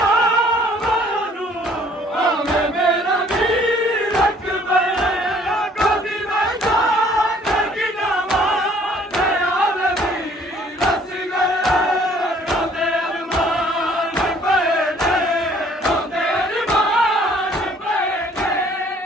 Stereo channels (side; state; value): both; normal; correlation 0.58